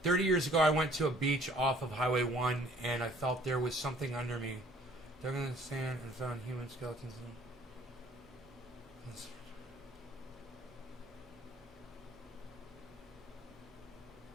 30 years ago, I went to a beach off of Highway 1, and I felt there was something under me. Dug in the sand and found human skeletons.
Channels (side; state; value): both; normal; correlation 0.56